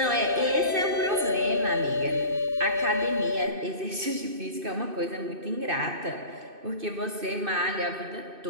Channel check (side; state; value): left; late; 2.6 ms